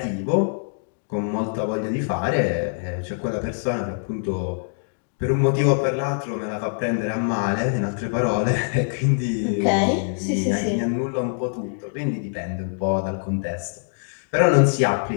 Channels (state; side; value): silent; right; digital silence